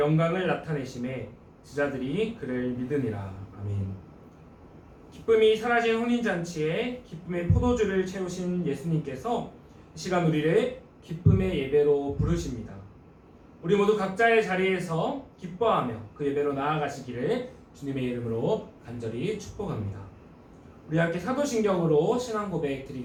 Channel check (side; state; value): both; identical; correlation 1.00